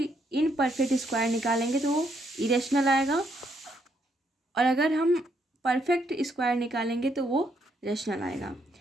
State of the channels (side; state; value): both; normal; correlation 0.74